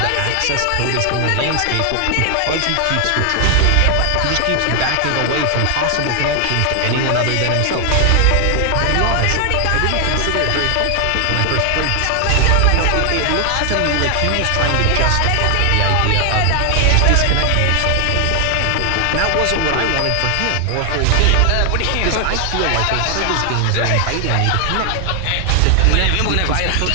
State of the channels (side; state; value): both; different; correlation 0.00